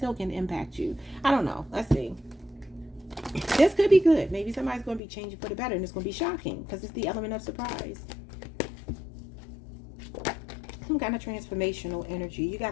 can impact you. I don't know. Let's see. This could be good. Maybe somebody's going to be changing for the better, and it's going to be shocking because it's the element of surprise. Some kind of transformational energy. You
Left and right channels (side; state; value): right; drops out; at 5.0 s